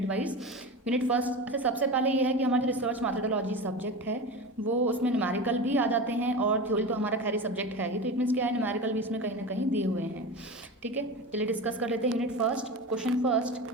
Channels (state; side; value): normal; both; correlation 0.27